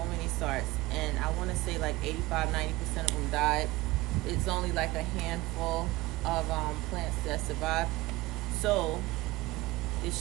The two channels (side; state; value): left; quieter; 19.7 dB